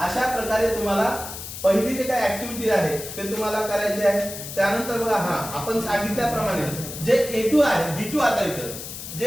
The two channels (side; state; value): left; noise; hiss, 10 dB below the sound